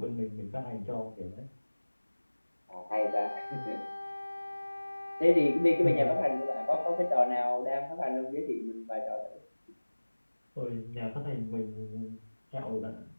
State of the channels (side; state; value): both; inverted; correlation -1.00